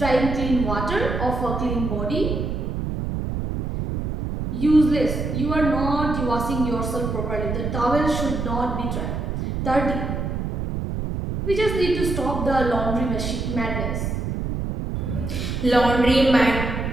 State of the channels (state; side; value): noise; right; rumble, 3 dB below the sound